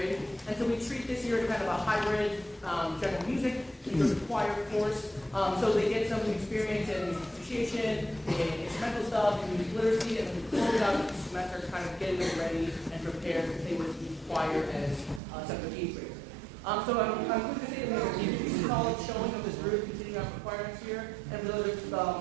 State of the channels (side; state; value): left; drops out; at 15.2 s